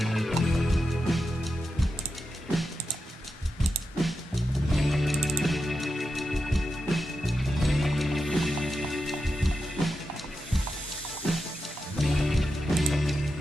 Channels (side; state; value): both; normal; correlation 0.89